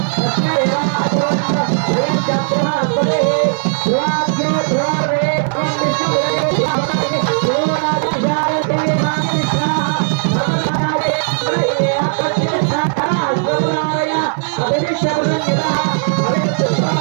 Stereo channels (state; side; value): silent; left; digital silence